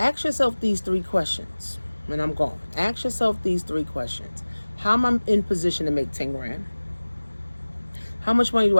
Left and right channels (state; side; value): inverted; both; correlation -1.00